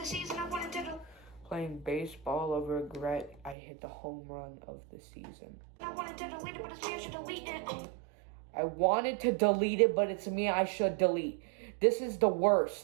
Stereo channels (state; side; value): drops out; left; at 3.6 s